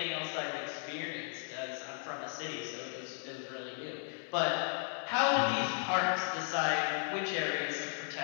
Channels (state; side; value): silent; right; 54 dB below the other